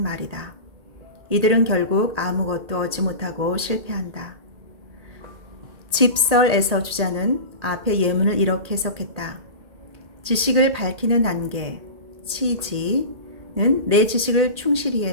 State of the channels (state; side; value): late; left; 1.8 ms